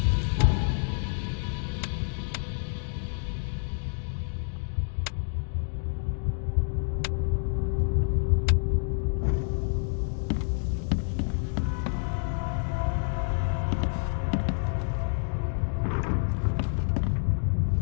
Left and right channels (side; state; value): right; silent; digital silence